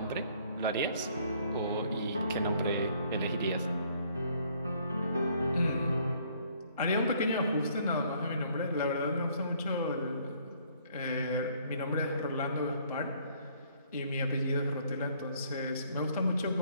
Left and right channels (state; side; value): inverted; both; correlation -0.63